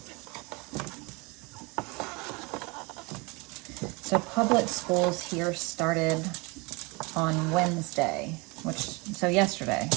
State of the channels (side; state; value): left; quieter; 27.6 dB